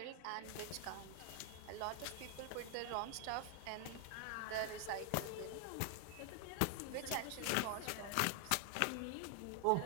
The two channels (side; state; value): both; different; correlation 0.00